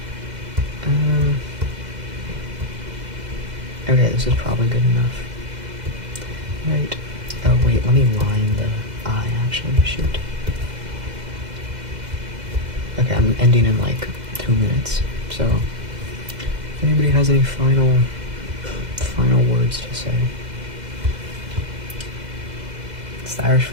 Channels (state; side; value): late; left; 2.0 ms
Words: Okay, this is probably good enough. Right. Oh, wait, let me line the eye, actually. Shoot. Okay, I'm ending in, like, 2 minutes. So, if anybody has any final words to say. It's the Irish